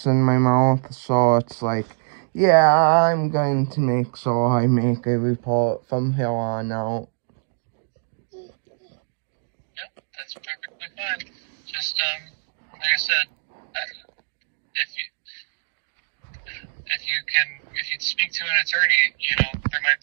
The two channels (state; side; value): silent; left; digital silence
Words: in my mouth, so it's like, yeah, I'm going to make sure I make a report from here on out. Yep, that's perfectly fine. Just, like I said, if you speak to an attorney,